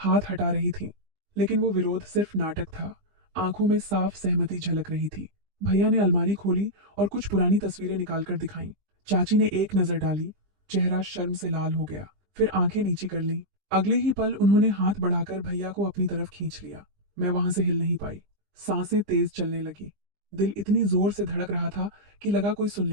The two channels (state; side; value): late; left; 20 ms